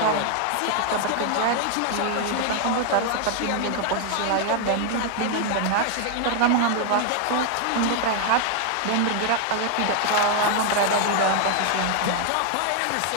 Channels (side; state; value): both; different; correlation 0.00